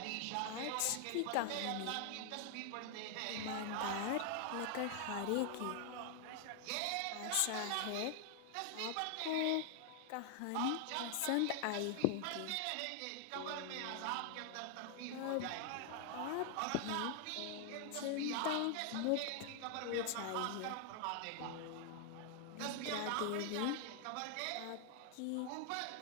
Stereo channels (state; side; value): different; both; correlation 0.00